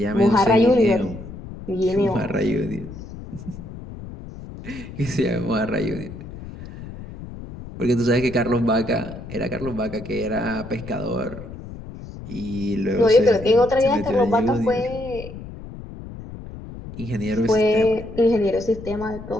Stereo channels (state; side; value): noise; left; rumble, 13 dB below the sound